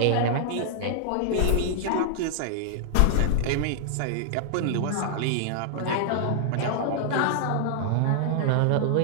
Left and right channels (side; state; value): both; different; correlation -0.01